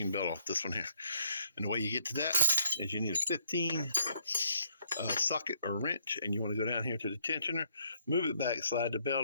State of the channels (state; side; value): inverted; both; correlation -0.67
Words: belt off this one here. And the way you get to that is you need a 15 socket or wrench, and you want to go down here to the tensioner, move it back, slide the belt